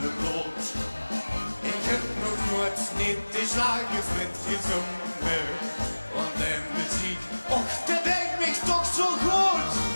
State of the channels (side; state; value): both; inverted; correlation -1.00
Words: de bloed. Ik heb nog nooit niet de slagervriend gezongen. Want de muziek, och, dat denkt me toch zo goed.